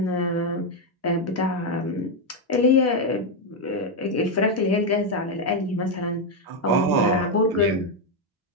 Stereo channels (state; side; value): normal; both; correlation 0.03